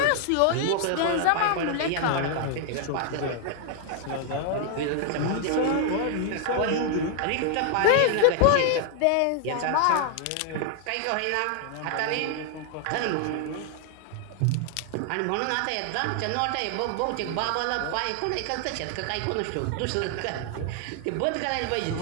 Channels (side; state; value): both; different; correlation 0.00